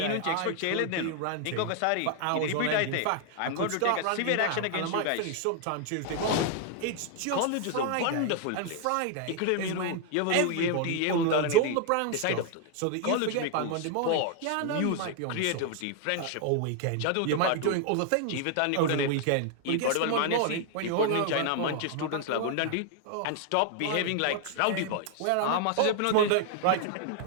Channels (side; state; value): both; different; correlation 0.00